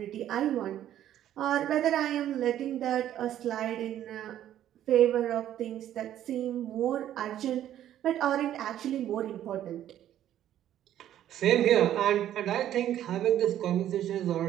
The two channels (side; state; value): left; quieter; 11.6 dB